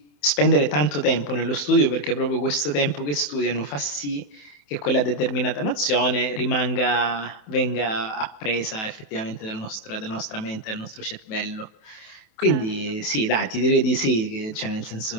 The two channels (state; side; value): late; right; 27 ms